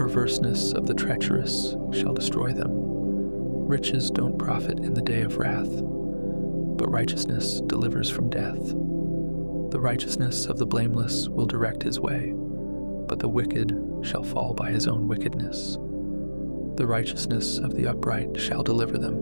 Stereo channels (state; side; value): inverted; both; correlation -1.00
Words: of the treacherous shall destroy them. Riches don't profit in the day of wrath, but righteousness delivers from death. The righteousness of the blameless will direct his way, but the wicked shall fall by his own wickedness. The righteousness of the upright shall deliver